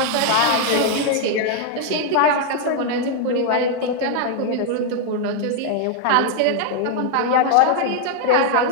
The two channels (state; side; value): different; both; correlation 0.00